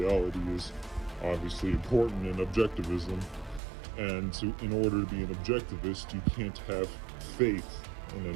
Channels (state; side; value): drops out; left; at 3.6 s